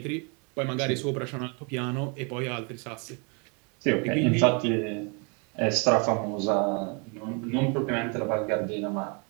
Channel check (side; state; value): left; quieter; 34.4 dB